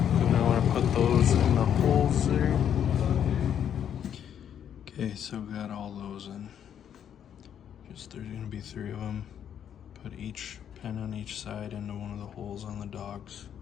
Put those in the holes there. Okay, so we got all those in. There's gonna be 3 of them. Put each pin on each side into one of the holes on the dogs.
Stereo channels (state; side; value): quieter; right; 9.2 dB